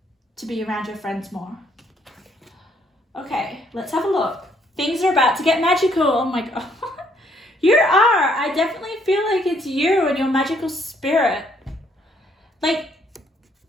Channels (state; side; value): normal; both; correlation 0.67